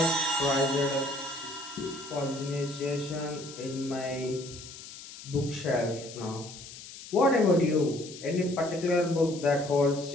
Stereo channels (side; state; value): left; noise; hiss, 14 dB below the sound